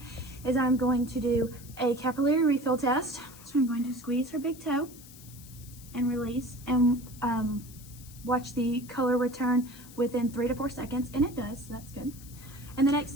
is I'm going to do a capillary refill test. So I'm going to squeeze her big toe and release and watch the color return within 3 to 4 seconds, and it does, so that's good. And the next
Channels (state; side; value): noise; left; hiss, 19 dB below the sound